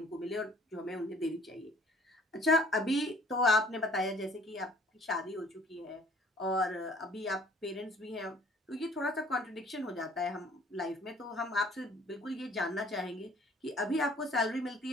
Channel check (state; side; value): normal; both; correlation 0.56